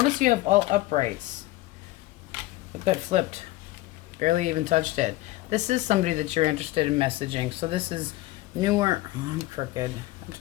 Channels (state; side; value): quieter; right; 18.2 dB